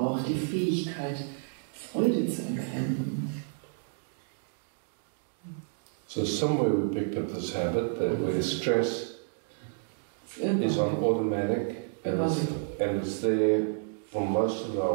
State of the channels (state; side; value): silent; left; digital silence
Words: die Fähigkeit, Freude zu empfinden. So somewhere we picked up this habit that where stress is on automatic and it's there for most of